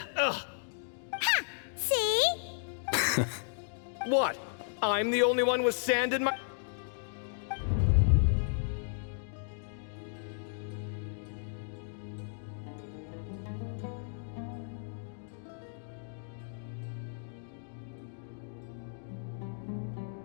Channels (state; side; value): silent; right; digital silence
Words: Ha! See? What? I'm the only one with sand in my...